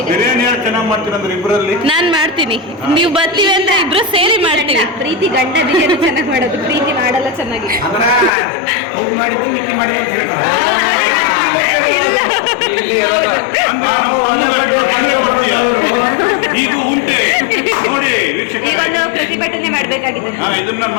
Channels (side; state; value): right; drops out; at 8.3 s